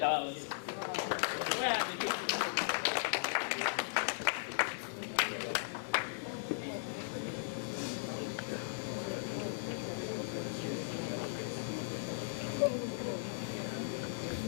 Where are the people?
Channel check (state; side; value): silent; right; 53 dB below the other